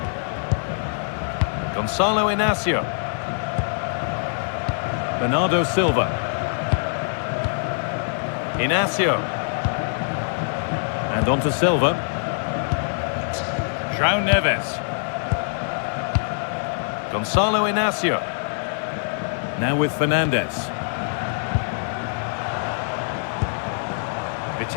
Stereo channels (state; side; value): silent; right; digital silence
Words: Gonzalo Inacio. Bernardo Silva. Inacio. And on to Silva. João Neves. Gonzalo Inacio. Now with Fernandes.